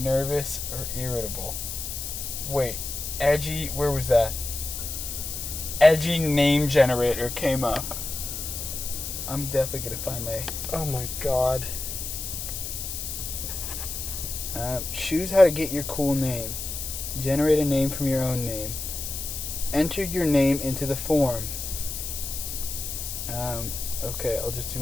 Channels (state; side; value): noise; left; hiss, 6 dB below the sound